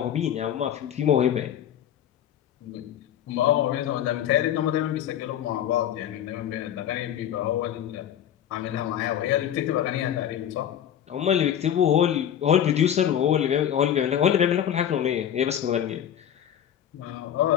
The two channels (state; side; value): quieter; right; 10.1 dB